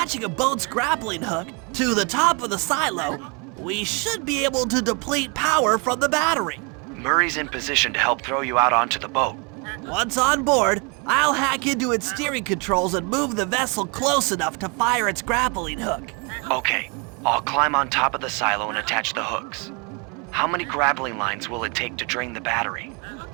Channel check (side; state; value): left; quieter; 31.8 dB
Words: a boat's grappling hook to the top of the silo, we should be able to deplete power from the battery. Murray's in position to help throw you out onto the boat. Once on board, I'll hack into its steering controls and move the vessel close enough to fire its grappling hook. Okay, I'll climb on top of the silo and attach the hooks. How many grappling lines will it take to drain the battery?